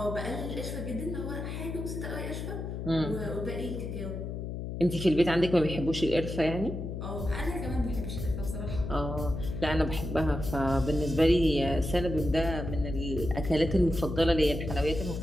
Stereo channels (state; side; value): noise; left; hum, 5 dB below the sound